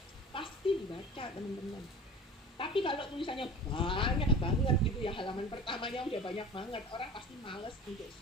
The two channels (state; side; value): normal; both; correlation 0.38